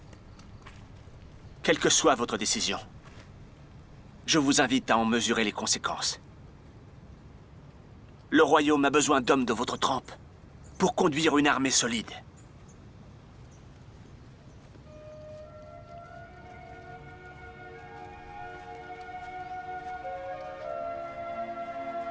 Quelle que soit votre décision, je vous invite à en mesurer les conséquences. Le royaume a besoin d'hommes de votre trempe pour conduire une armée solide.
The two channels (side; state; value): both; identical; correlation 1.00